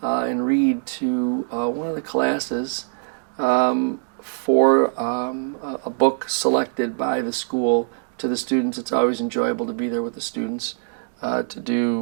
and read to one of the classes for a book selected by the school to the students. It's always enjoyable to be there with the students to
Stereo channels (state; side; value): silent; left; digital silence